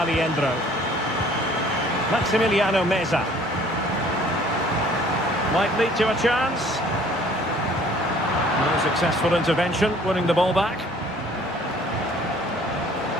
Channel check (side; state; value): both; normal; correlation 0.55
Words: Maximiliano Meza. Might lead to a chance. A successful intervention, winning the ball back.